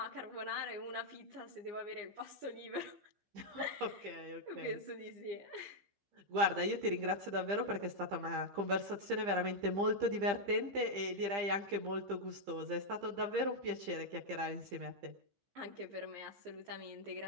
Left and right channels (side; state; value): left; late; 15 ms